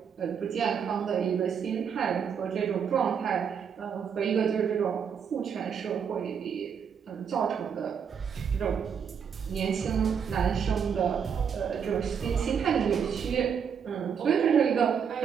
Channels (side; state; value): left; quieter; 7.2 dB